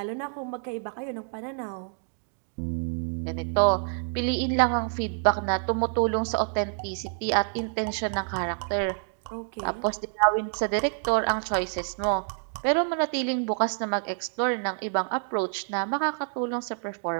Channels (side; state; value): left; silent; 60 dB below the other